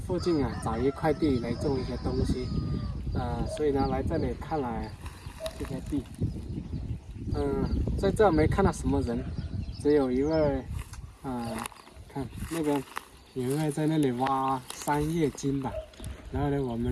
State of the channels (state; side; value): identical; both; correlation 1.00